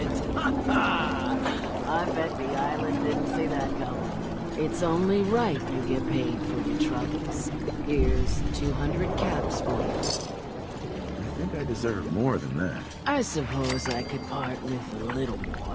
I bet the island didn't see that coming. It's only right you get paid for your troubles. Here's 200 caps for you. I think I deserve more than that. I suppose I could part with a little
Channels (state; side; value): identical; both; correlation 1.00